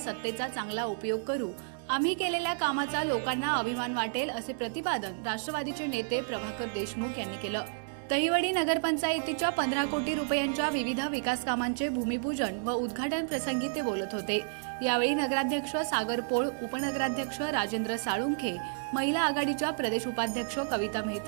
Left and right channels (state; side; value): silent; left; digital silence